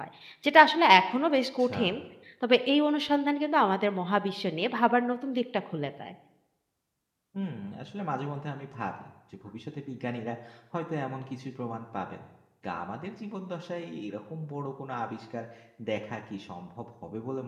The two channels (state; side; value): identical; both; correlation 1.00